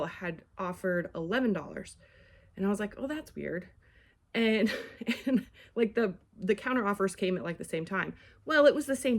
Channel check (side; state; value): both; identical; correlation 1.00